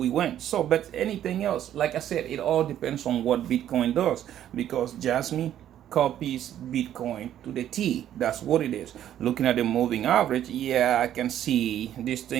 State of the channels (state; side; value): quieter; left; 11.2 dB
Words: went. So, but anything else, like I said, it all depends on what Bitcoin does, because Jasmine copies Bitcoin to the T. That's what it is. Looking at the moving average, yeah, I can see this